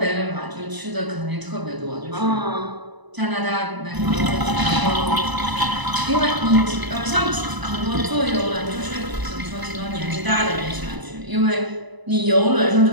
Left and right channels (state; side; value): late; left; 1.0 ms